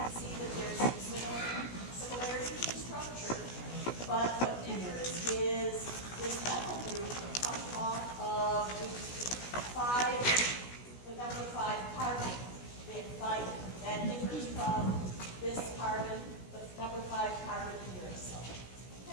see that there's some similarities in structure, but what differs is this methyl group comes off of the number 5 carbon. They have thymine. That differs from this carbon, the number 5 carbon in uracil.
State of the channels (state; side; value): late; right; 16 ms